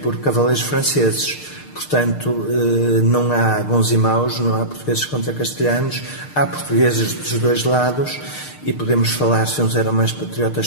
cavaleiros franceses. Portanto, não há bons e maus, não há portugueses contra castelhanos, há portugueses dos dois lados e podemos falar se uns eram mais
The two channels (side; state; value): right; late; 6.6 ms